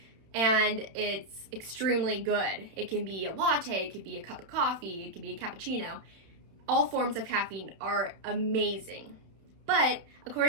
and it's extremely good. It can be a latte, it could be a cup of coffee, it could be a cappuccino. All forms of caffeine are amazing. But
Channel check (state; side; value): late; left; 31 ms